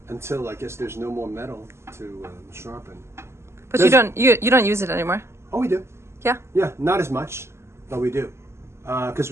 until I guess there's no more metal to sharpen. But you don't use it anymore? Oh, we do. Yeah? Yeah, not as much, but we do. Because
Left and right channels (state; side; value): late; left; 0.13 ms